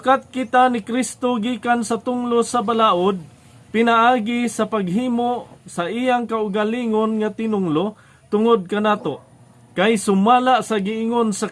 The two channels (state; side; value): identical; both; correlation 1.00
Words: kita ni Kristo gikan sa tunglo sa balaod, pinaagi sa paghimo sa iyang kaugalingon nga tinunglo tungod kanato, kay sumala sa giingon sa